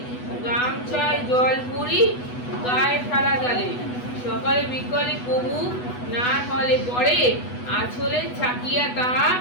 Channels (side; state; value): right; late; 8.1 ms